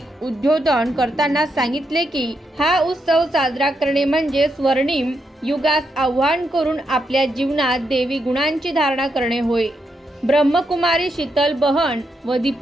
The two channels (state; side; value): normal; both; correlation 0.82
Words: उद्बोधन करताना सांगितले की हा उत्सव साजरा करणे म्हणजे स्वर्णिम युगास आव्हान करून आपल्या जीवनात देवी गुणांची धारणा करणे होय। ब्रह्मकुमारी शीतल बहन व